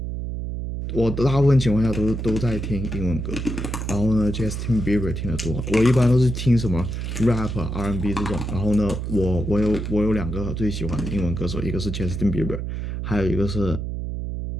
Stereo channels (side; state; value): right; noise; hum, 4 dB below the sound